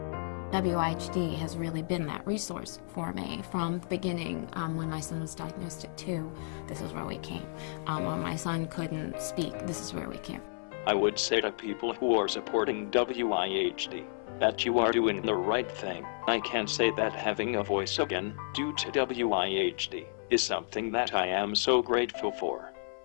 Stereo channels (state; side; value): silent; right; 57 dB below the other